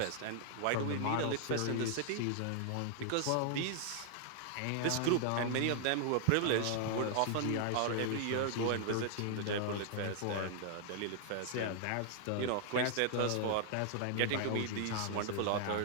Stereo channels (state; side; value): different; both; correlation 0.00